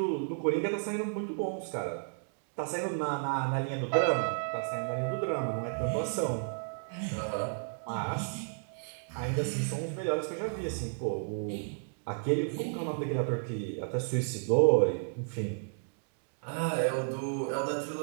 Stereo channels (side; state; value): left; silent; digital silence